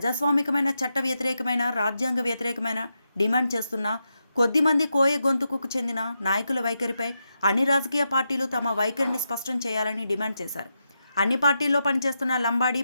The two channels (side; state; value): both; inverted; correlation -0.86